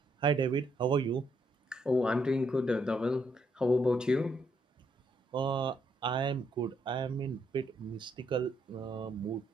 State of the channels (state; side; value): normal; both; correlation 0.75